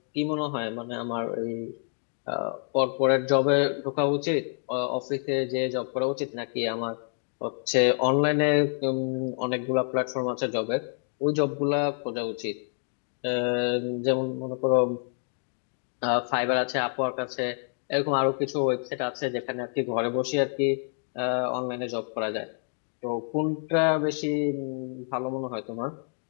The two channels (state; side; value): silent; right; 60 dB below the other